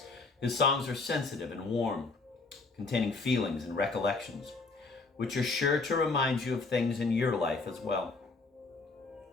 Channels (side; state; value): right; quieter; 3.8 dB